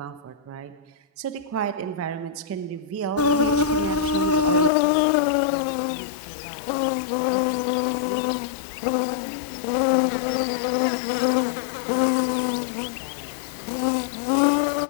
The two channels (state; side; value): drops out; right; at 4.7 s